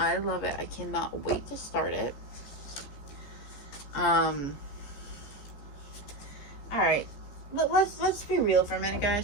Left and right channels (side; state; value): right; late; 14 ms